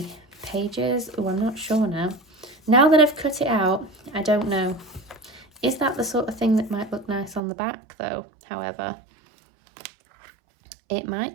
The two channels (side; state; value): left; drops out; at 7.4 s